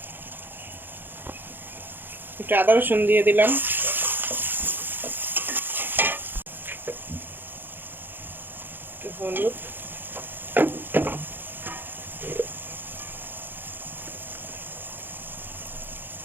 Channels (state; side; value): late; left; 0.096 ms